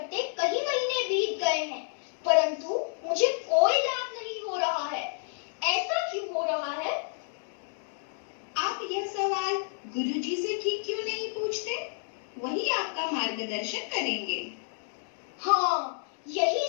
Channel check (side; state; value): right; silent; 58 dB below the other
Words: कई महीने बीत गए हैं, परंतु मुझे कोई लाभ नहीं हो रहा है। ऐसा क्यों हो रहा है? आप यह सवाल गुरुजी से ठीक क्यों नहीं पूछते? वही आपका मार्गदर्शन करेंगे। हाँ, यही